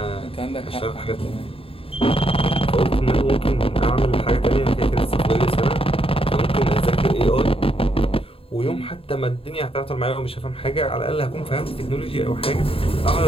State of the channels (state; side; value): late; right; 0.27 ms